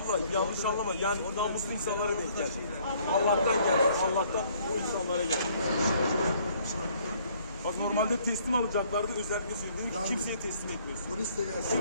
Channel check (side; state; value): both; inverted; correlation -0.62